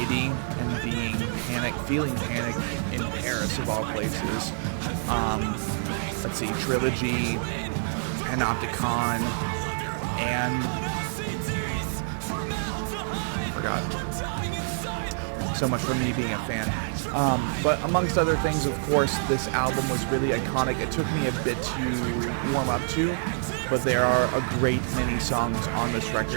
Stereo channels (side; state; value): left; silent; digital silence